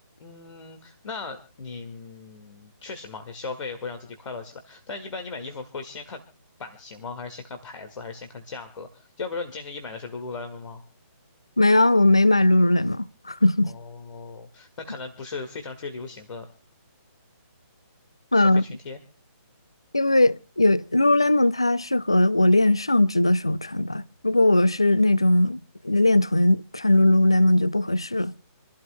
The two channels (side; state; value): both; inverted; correlation -0.96